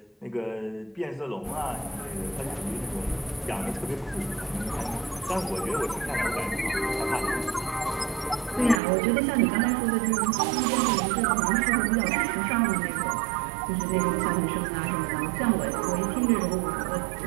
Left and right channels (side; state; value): left; drops out; at 8.8 s